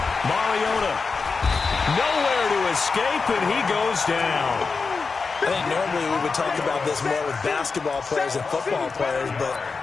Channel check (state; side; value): quieter; right; 4.6 dB